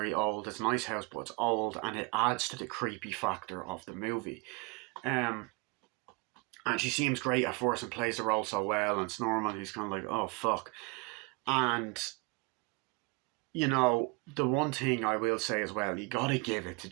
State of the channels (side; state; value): left; quieter; 27.5 dB